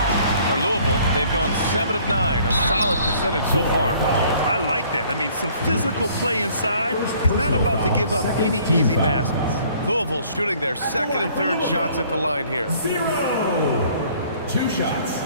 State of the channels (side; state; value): both; inverted; correlation -0.58